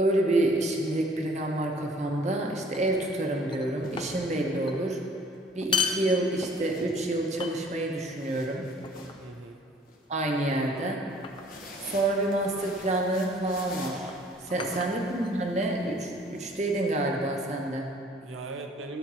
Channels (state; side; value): normal; both; correlation 0.55